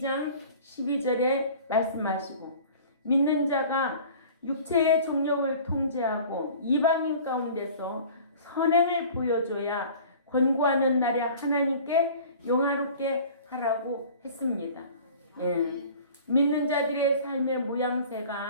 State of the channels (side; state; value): both; inverted; correlation -0.45